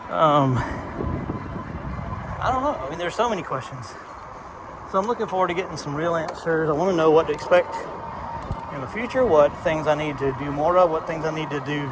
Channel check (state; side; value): identical; both; correlation 1.00